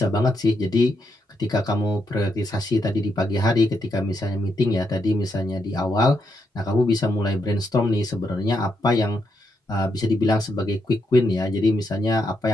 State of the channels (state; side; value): normal; both; correlation 0.80